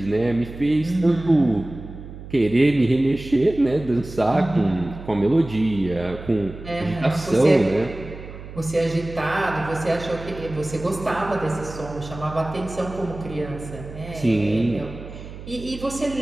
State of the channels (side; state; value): right; noise; hum, 13 dB below the sound